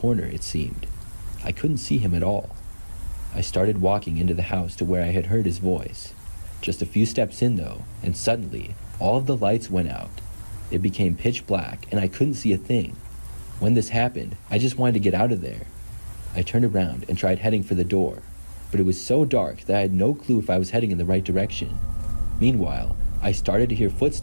it seemed. I couldn't see him at all. I started walking into the house to where I had heard his voice. Just a few steps in though, and suddenly all of the lights went out. It became pitch black and I couldn't see a thing. When this happened, I just wanted to get out of there. I turned around and tried heading for the door, but it was so dark that I had no clue if I was heading in the right direction. Meanwhile, I started to hear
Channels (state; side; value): inverted; both; correlation -1.00